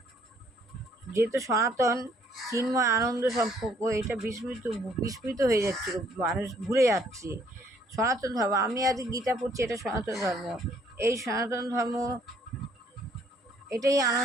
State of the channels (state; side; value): normal; both; correlation 0.64